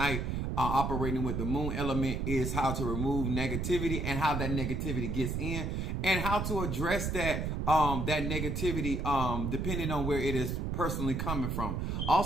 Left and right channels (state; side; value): noise; right; rumble, 1 dB below the sound